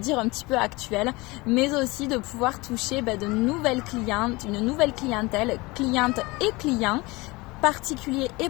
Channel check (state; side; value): quieter; right; 23.2 dB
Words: un petit peu actuelles, mais aussi de pouvoir toucher de nouvelles clientes, une nouvelle clientèle, clientes et clients, particuliers et